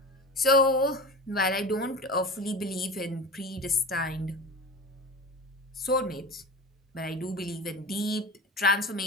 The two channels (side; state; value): both; normal; correlation 0.31